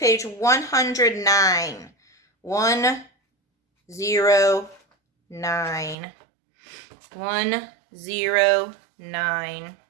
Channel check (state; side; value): drops out; left; at 6.0 s